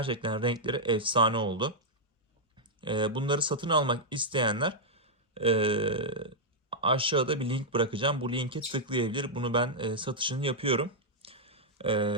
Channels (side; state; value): both; normal; correlation -0.05